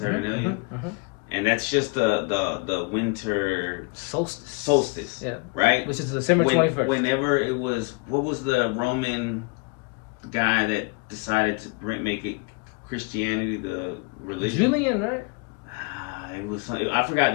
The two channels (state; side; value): quieter; right; 31.0 dB